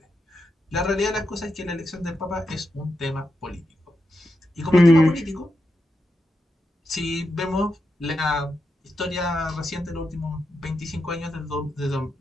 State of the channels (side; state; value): both; normal; correlation 0.86